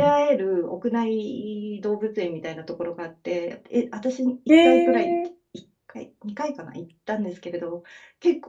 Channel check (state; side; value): identical; both; correlation 1.00